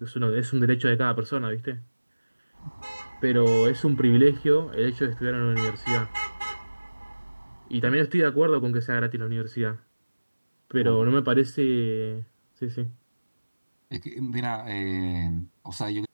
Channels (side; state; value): both; inverted; correlation -1.00